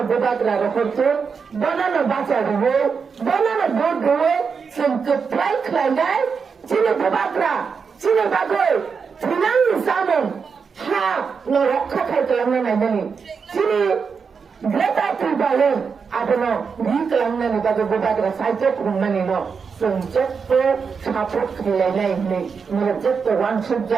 বুবাকরা রহতো বনানো বাঁচা দেবো বনানো ভোট দেবো जोंखौ फ्राय खालायनाय 지네 बुबाकरा 지네 बागै थैनांनि जामोन हा न रक्षा खालामनानै नायनानै 지네 ग्रेटा ट्रिबालेन आबोनो रि खालामनानै बागै बुबाकरा साइजो खुंनानै न जों जेबो सापर्ट खालायनाय नै नों जेबो वानसुब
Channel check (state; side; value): quieter; left; 5.7 dB